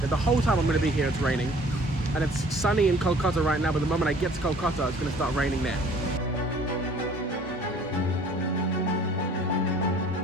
whole time I'm going to be here, it's raining. And it's sunny in Kolkata right now, but the moment I get to Kolkata, it's going to start raining there.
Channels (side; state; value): both; normal; correlation 0.53